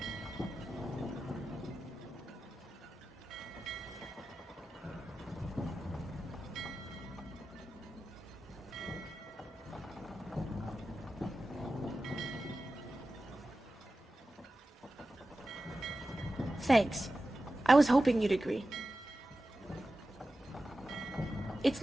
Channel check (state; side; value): normal; both; correlation 0.94